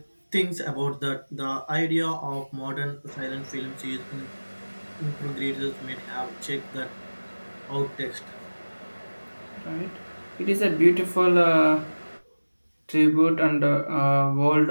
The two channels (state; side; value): inverted; both; correlation -1.00